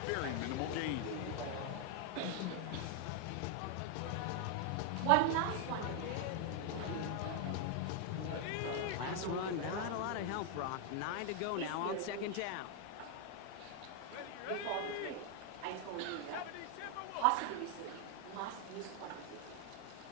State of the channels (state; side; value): different; both; correlation 0.01